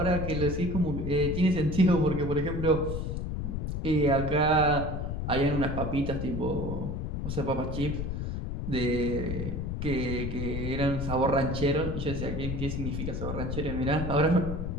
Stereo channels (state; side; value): noise; left; rumble, 3 dB below the sound